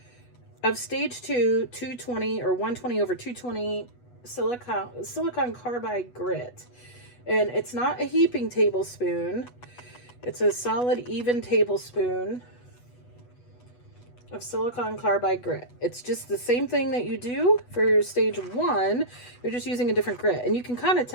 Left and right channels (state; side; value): late; right; 8.2 ms